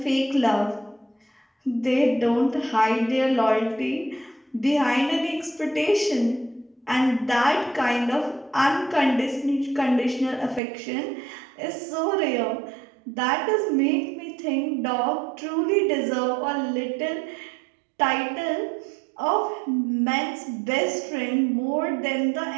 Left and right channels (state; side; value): drops out; left; at 10.6 s